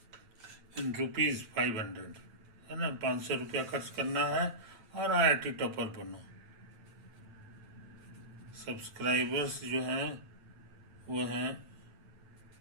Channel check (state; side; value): late; left; 9.1 ms